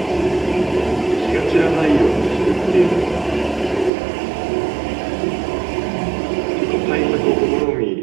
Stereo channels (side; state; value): left; drops out; at 3.9 s